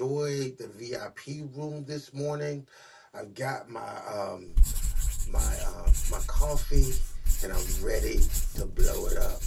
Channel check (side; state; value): both; identical; correlation 1.00